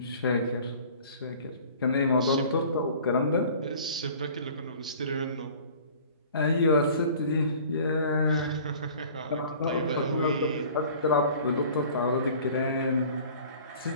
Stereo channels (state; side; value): inverted; both; correlation -0.47